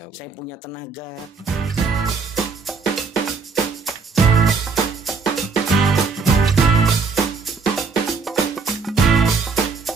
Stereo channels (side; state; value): left; quieter; 4.8 dB